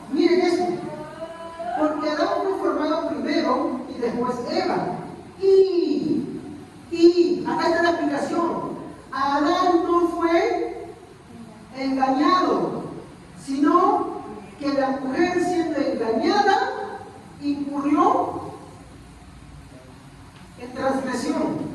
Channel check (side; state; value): both; identical; correlation 1.00